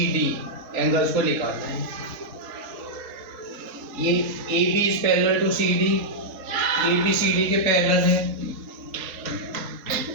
एंगल्स को निकालना है। ये AB is parallel to CD, ABCD के पैरेलल है।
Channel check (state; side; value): late; left; 4.8 ms